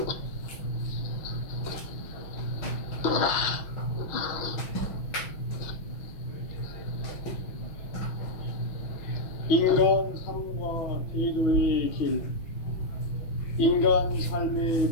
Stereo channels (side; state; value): right; late; 6.3 ms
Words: 인간 삶과 대도의 길. 인간 삶의